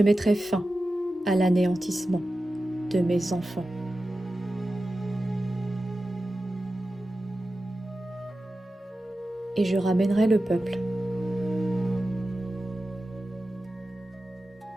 mettrai fin à l'anéantissement de mes enfants. Et je ramènerai le peuple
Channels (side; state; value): both; normal; correlation 0.93